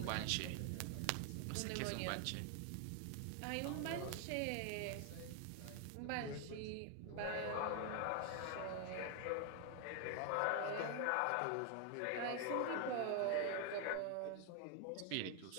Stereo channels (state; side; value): different; both; correlation 0.01